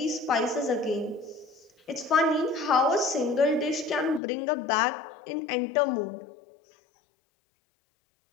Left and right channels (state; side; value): drops out; right; at 4.2 s